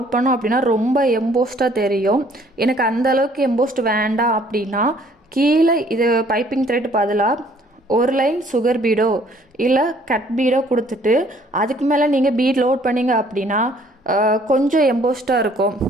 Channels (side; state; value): both; normal; correlation 0.59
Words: பண்ணோம் அப்படின்னா ரொம்ப எம்போஸ்டாக தெரியும். எனக்கு அந்தளவுக்கு எம்போஸ்ட் வேண்டாம் அப்படின்னா கீழே இது பைப்பிங் த்ரெட் பதிலாக ஒரு லைன் சுகர் பீடோ இல்லை கட் பீடோ கொடுத்துட்டு அதுக்கு மேலே நீங்கள் பீட் லோட் பண்ணிங்க அப்படின்னா கொஞ்சம் எம்போஸ்டாக இருக்கும்.